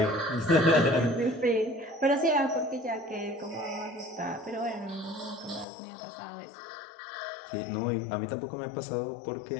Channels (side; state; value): right; drops out; at 5.7 s